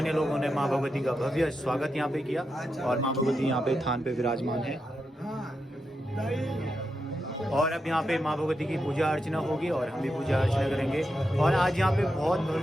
लोगों ने मां भगवती का भव्य स्वागत यहाँ पे किया और मां भगवती यहाँ पे थान पे विराजमान है। और अब यहाँ पे मां भगवती की पूजा अर्चना होगी और हम भी पूजा अर्चना करेंगे। और आज यहाँ पे बहुत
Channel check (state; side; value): normal; both; correlation 0.86